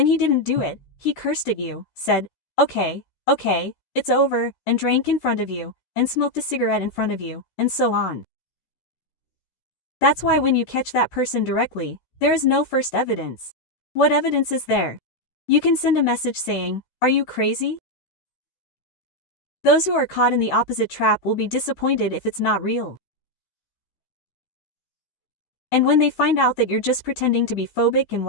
he didn't do it, he cursed at you, said, okay, it's over, and drank in front of you, and smoked a cigarette in front of you, and so on. That's why when you catch that person directly, there is no first evidence. What evidence is there? You can send a message saying, are you crazy? Those who are caught in the opposite trap will be disappointed if it's not real. And when they find out that you're just pretending to be phobic and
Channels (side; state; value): right; late; 14 ms